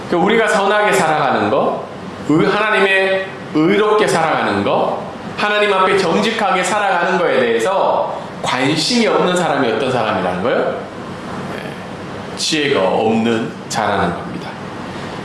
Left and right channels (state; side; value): identical; both; correlation 1.00